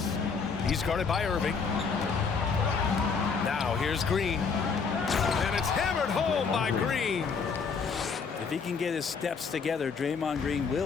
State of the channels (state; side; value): quieter; right; 5.5 dB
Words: He's guarded by Irving. Now here's Green. And it's hammered home by Green. If he can get his steps together, Draymond Green